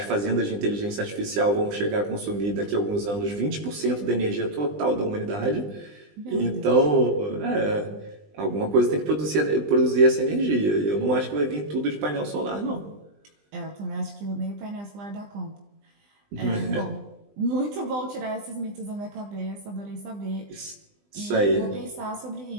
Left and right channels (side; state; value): left; late; 20 ms